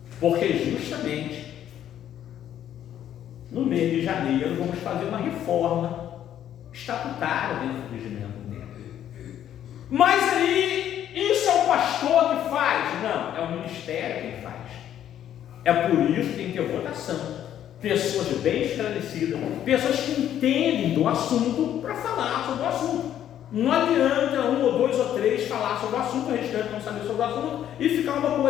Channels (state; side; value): quieter; right; 10.8 dB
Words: porque justamente no mês de janeiro vamos fazer uma reforma estatutária dentro do regimento interno. Mas aí, isso é o pastor que faz? Não, é o ministério quem faz. É por isso que tem que ter votação. Pessoas bem esclarecidas, pessoas que entendem do assunto para falar sobre o assunto. Não adianta um ou dois ou três falar sobre o assunto, o restante não saber sobre o assunto e ficar uma